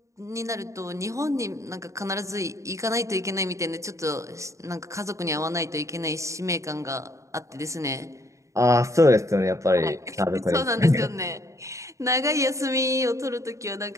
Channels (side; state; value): left; late; 0.15 ms